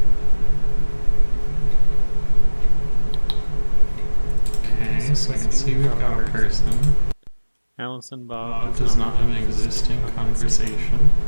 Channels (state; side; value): inverted; both; correlation -1.00